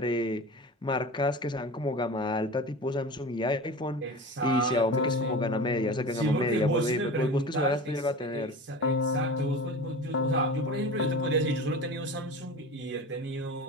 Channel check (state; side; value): normal; both; correlation 0.33